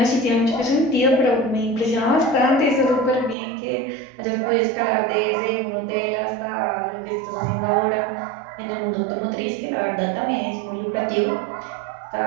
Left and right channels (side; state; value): left; drops out; at 3.4 s